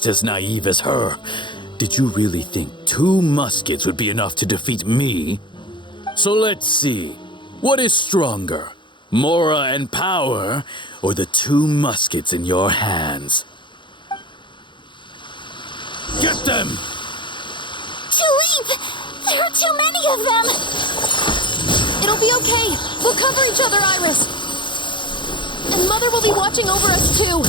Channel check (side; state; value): right; late; 0.23 ms